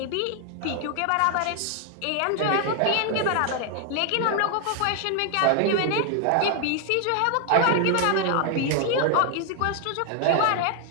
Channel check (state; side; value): different; both; correlation 0.00